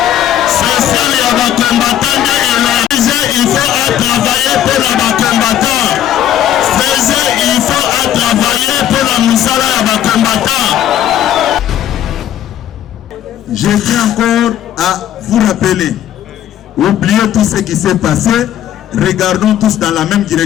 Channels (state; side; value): quieter; right; 11.2 dB